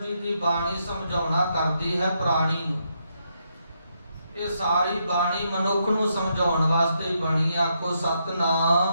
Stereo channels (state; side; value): inverted; both; correlation -0.79